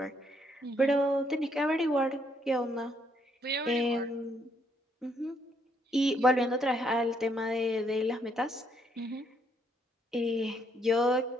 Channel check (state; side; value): normal; both; correlation 0.72